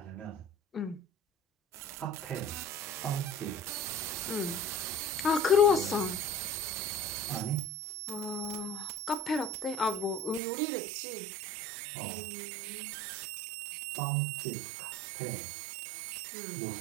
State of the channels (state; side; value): drops out; left; at 10.4 s